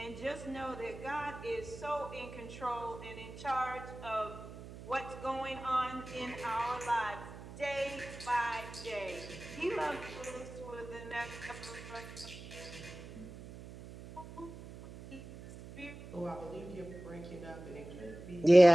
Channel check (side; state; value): right; noise; hum, 14 dB below the sound